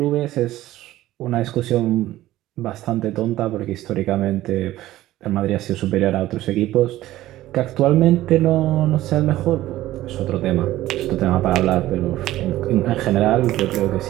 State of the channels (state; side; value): quieter; left; 15.3 dB